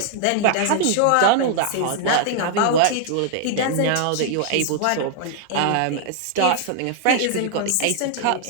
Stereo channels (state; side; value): different; both; correlation 0.00